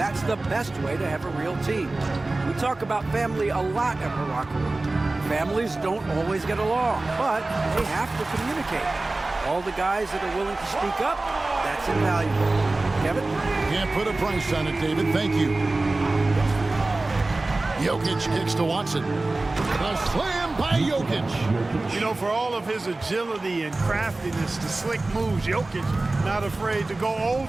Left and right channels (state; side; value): quieter; left; 3.1 dB